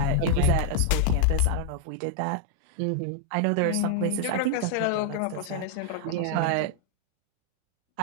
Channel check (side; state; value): both; different; correlation 0.00